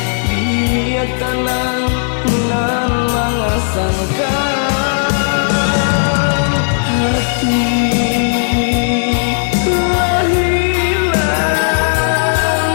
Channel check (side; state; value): right; silent; 70 dB below the other